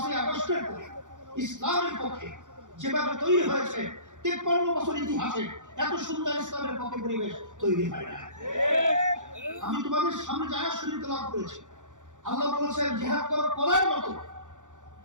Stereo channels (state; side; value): late; left; 0.86 ms